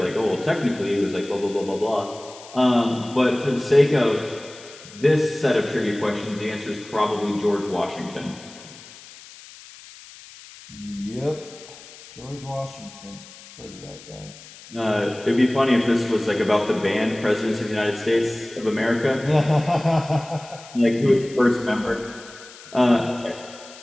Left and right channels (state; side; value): noise; left; hiss, 19 dB below the sound